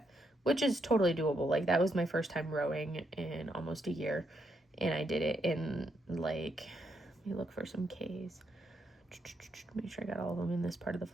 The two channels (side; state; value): both; normal; correlation 0.78